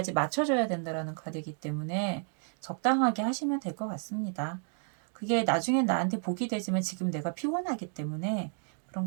맞춰줘야 된다라는 카드이기 때문에 적당하게 하시면 될 것 같습니다. 그게 나중엔 나한테 복이 되지만 지금 내가 피곤하기 때문에 그런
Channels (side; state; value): left; silent; 57 dB below the other